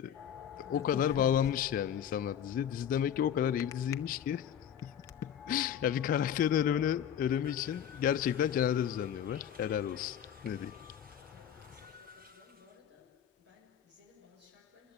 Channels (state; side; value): quieter; right; 9.3 dB